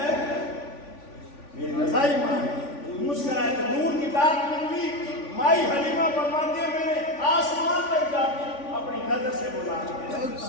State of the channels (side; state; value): right; late; 3.5 ms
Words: میری رضائی ماں ہے مسکرائے تو نور کی داد نکلی مائی حلیمہ فرماتی ہے میں نے آسمان تک جا کے اپنی نظر سے بلا